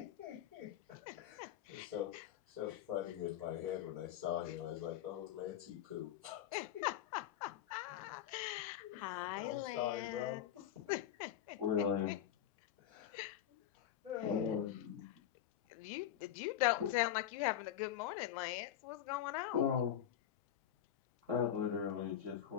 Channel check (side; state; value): right; quieter; 10.5 dB